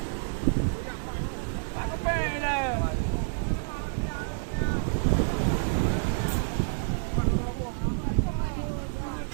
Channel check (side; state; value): left; silent; digital silence